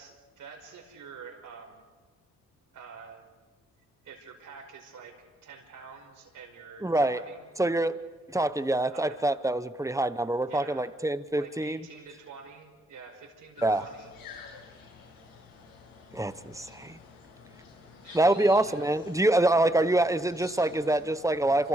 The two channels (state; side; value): normal; both; correlation 0.76